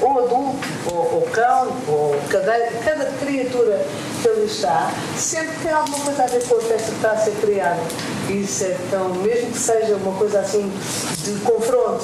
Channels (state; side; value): identical; both; correlation 1.00